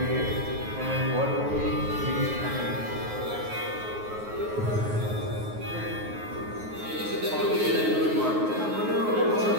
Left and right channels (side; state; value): left; late; 9.4 ms